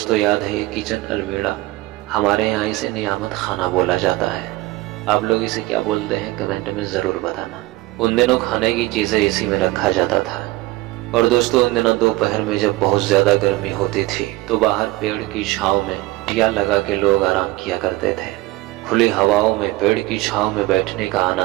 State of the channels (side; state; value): left; quieter; 19.0 dB